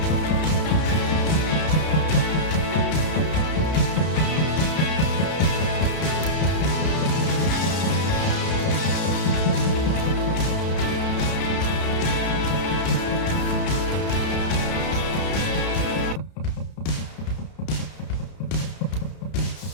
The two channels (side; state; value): right; late; 31 ms